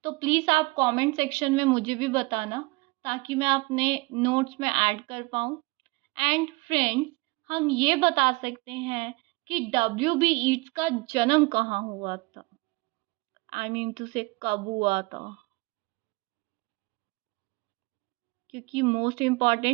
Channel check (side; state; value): left; quieter; 25.0 dB